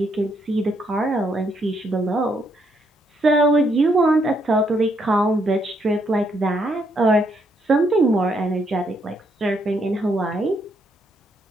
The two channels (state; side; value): normal; both; correlation 0.74